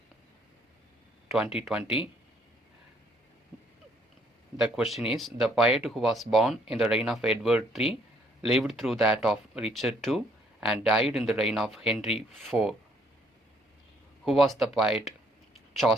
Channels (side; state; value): both; normal; correlation 0.66